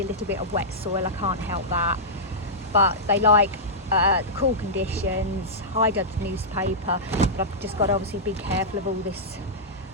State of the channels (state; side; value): normal; both; correlation -0.12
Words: a little bit of wet soil, I can't help that, but they like the cool conditions, hide under the newspaper, but I've just got to obviously be careful of all this